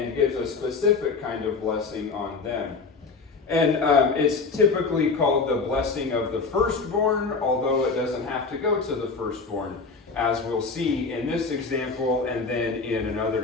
gives a specific kind of blessing on them. And it's typically called the blessing of the firstborn, although it doesn't have to go to the firstborn, as we'll see in this example and then in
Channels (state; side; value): quieter; right; 4.4 dB